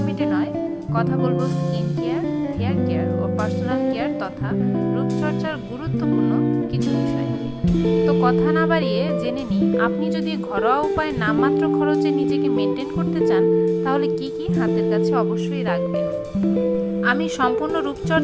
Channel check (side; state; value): both; identical; correlation 1.00